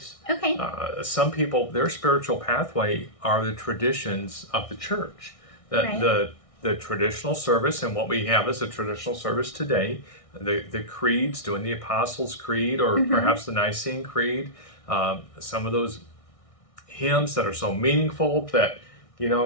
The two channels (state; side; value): late; right; 1.6 ms